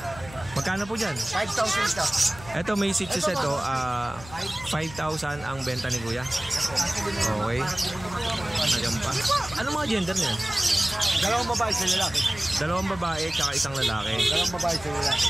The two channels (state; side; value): noise; left; hum, 16 dB below the sound